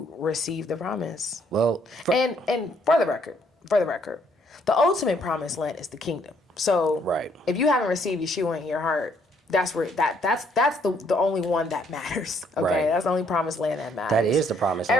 receive the promise? Well, and for the record, the ultimate promised land is the kingdom. So right. if you haven't received Yeshua in your heart, that's where that's the only one that matters. Okay, Right. that's the only promised land that matters. That is the promised land.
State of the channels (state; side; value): normal; both; correlation 0.68